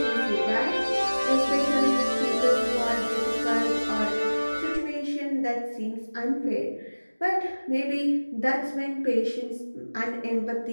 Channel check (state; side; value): inverted; both; correlation -1.00